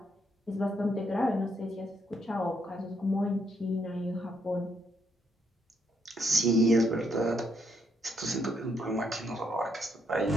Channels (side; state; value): both; normal; correlation 0.75